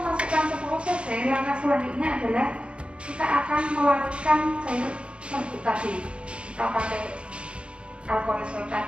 10 cc, langkah selanjutnya adalah kita akan melarutkan cair serbuk tadi. Kita pakai alkohol swab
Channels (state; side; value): late; left; 0.058 ms